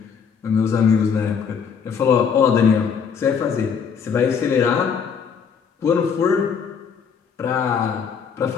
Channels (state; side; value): quieter; right; 6.6 dB